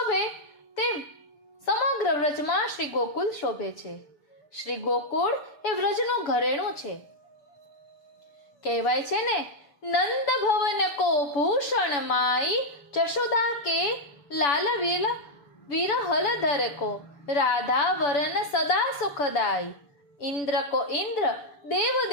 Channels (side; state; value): right; late; 7.0 ms